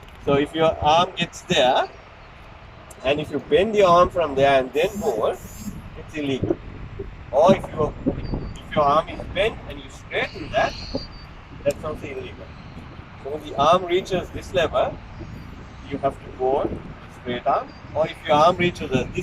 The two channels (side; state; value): both; identical; correlation 1.00